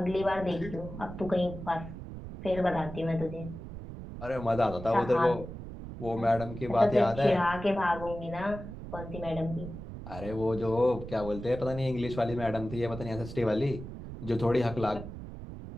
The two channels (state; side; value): noise; right; rumble, 10 dB below the sound